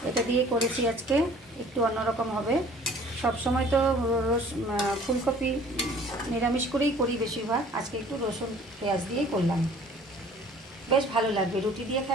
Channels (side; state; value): both; normal; correlation 0.51